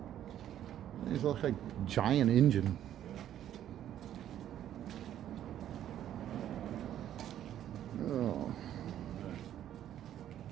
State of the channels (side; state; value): left; quieter; 11.2 dB